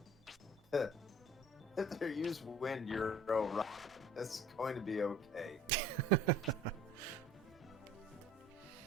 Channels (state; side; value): normal; both; correlation 0.49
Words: they use wind, you're alright. It's going to be okay.